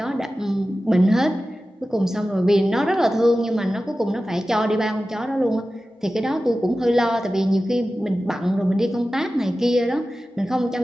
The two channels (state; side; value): normal; both; correlation 0.95